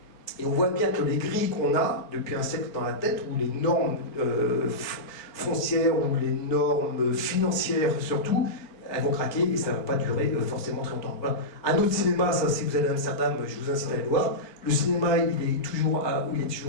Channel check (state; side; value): late; right; 4.6 ms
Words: et on voit bien que les grilles qu'on a depuis un siècle dans la tête, où les normes foncières ou les normes financières surtout, elles vont craquer et ça ne va pas durer forcément très longtemps. Voilà. Un autre cinéma, ça, si vous allez à Amsterdam, je vous incite à aller le voir. Le cinéma, il